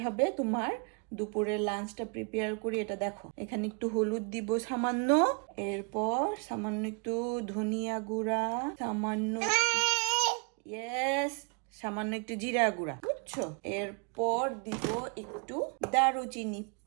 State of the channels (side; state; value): left; quieter; 36.9 dB